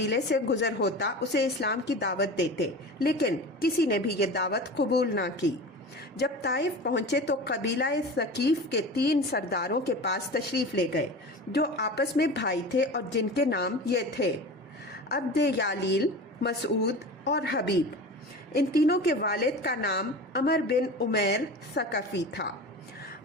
سے گزر ہوتا اسے اسلام کی دعوت دیتے، لیکن کسی نے بھی یہ دعوت قبول نہ کی۔ جب طائف پہنچے تو قبیلہ ثقیف کے 3 سرداروں کے پاس تشریف لے گئے جو آپس میں بھائی تھے اور جن کے نام یہ تھے عبد یالیل، مسعود اور حبیب۔ ان تینوں کے والد کا نام عمر بن عمیر ثقفی تھا۔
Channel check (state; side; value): normal; both; correlation 0.33